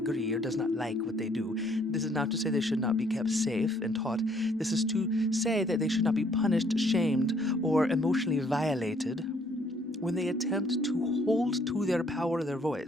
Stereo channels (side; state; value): both; normal; correlation 0.65